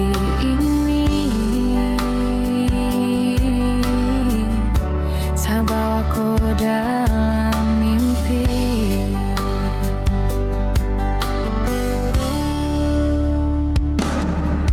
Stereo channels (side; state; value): both; identical; correlation 1.00